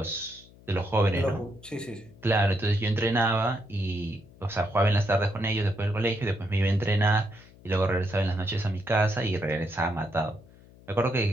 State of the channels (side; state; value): left; noise; hum, 24 dB below the sound